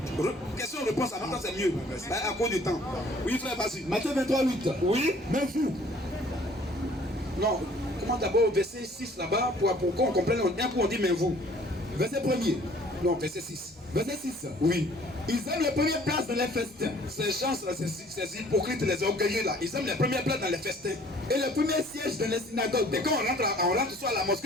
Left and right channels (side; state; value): both; normal; correlation 0.55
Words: Question-réponse, en même temps, c'est mieux. À cause du temps. Oui, frère, vas-y. Matthieu 23, 8. Oui. Même vous. Non, comment d'abord verset 6 là-bas pour qu'on comprenne. Un coup, on dit mais vous. Verset 1er. Non, verset 6. Verset 6. Oui. Ils aiment les premières places dans les festins. Ces gens-là, ces hypocrites, les orgueilleux là, ils aiment les premières places dans les festins. Et les premiers sièges dans les synagogues. Et quand on rentre soit à la